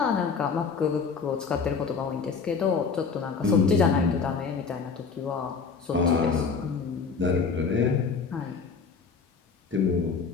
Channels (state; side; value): quieter; right; 5.2 dB